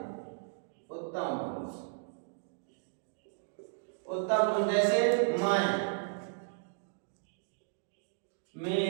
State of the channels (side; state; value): left; silent; digital silence